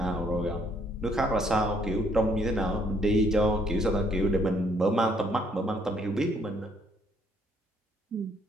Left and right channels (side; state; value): both; normal; correlation 0.68